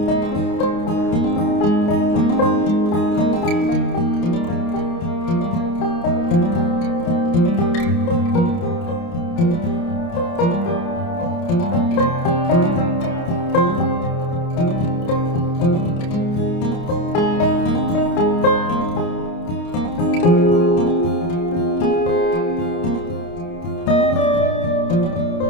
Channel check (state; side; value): late; right; 29 ms